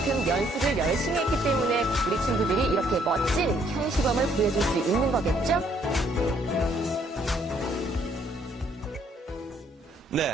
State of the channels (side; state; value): both; normal; correlation 0.66